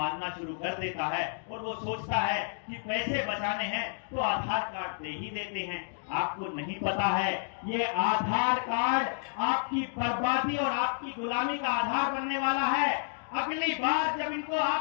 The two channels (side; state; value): right; silent; digital silence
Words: शुरू कर देता है और वो सोचता है कि पैसे बचाने हैं तो आधार कार्ड दे ही देते हैं। आपको नहीं पता है ये आधार कार्ड आपकी बर्बादी और आपकी गुलामी का आधार बनने वाला है। अगली बार जब इनको